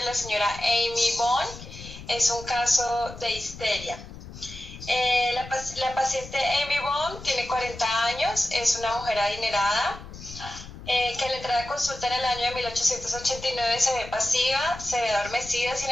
la señora Amy Bond. Es un caso de histeria. La paciente Amy Bond tiene 40 años, es una mujer adinerada. Que al entrar a consulta en el año de 1889 se ve pasiva, se ve adormecida, sin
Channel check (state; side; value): noise; left; rumble, 14 dB below the sound